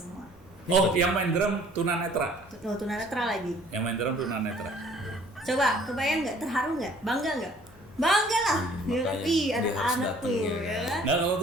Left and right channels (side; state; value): both; normal; correlation 0.55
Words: Oh, yang main drum tunanetra. Oh, tunanetra lagi. Yang main drum tunanetra. Coba, kebayang nggak? Terharu nggak? Bangga nggak? Bangga lah. Ya kan? Ih, ada anak tuh, ya kan? Nah, kalau